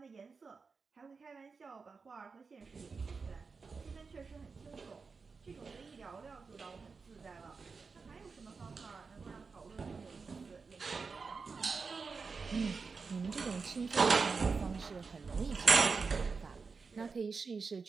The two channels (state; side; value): quieter; left; 4.8 dB